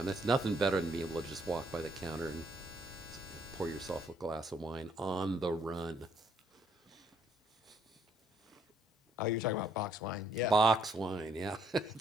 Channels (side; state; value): both; normal; correlation 0.67